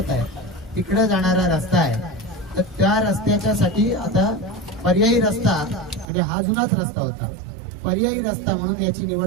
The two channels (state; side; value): drops out; left; at 6.1 s